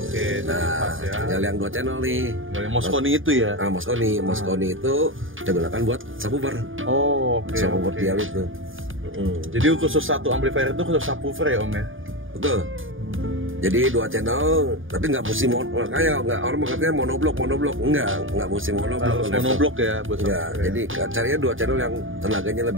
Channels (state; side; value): late; left; 0.58 ms